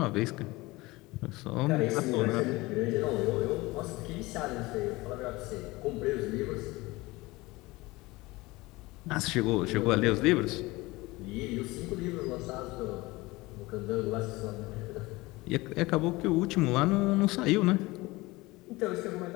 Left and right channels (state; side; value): quieter; right; 21.4 dB